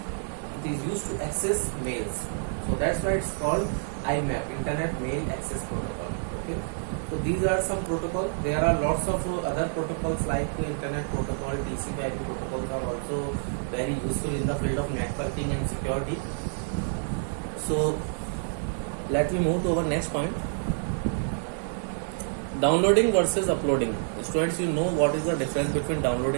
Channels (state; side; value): silent; left; digital silence